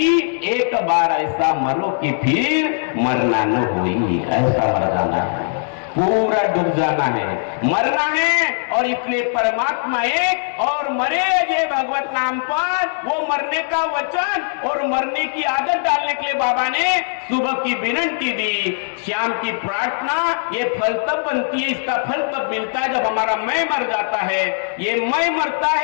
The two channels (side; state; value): right; silent; digital silence